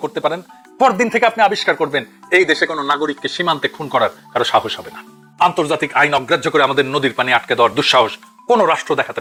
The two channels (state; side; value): identical; both; correlation 1.00